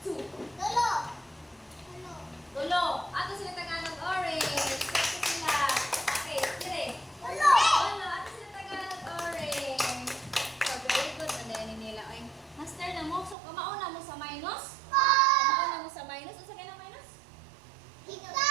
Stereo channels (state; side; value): drops out; left; at 13.4 s